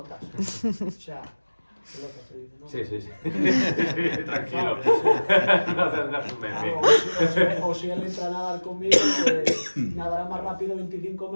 O sea, pelotas se dice, ¿no? Sí, sí, sí. Tranquilo. No tendrás un meme. O si él entra a nadar conmigo, pues nadará más rápido 25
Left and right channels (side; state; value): both; inverted; correlation -1.00